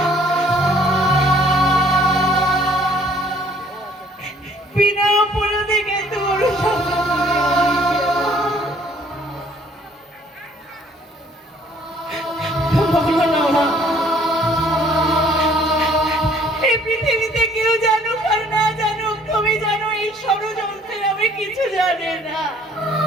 বিনা অপরাধে কিন্তু বলো না মা, এই পৃথিবীতে কেউ জানুক আর না জানুক তুমি জানো এই ষড়যন্ত্রের আমি কিছু জানি না।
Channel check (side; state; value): both; normal; correlation 0.59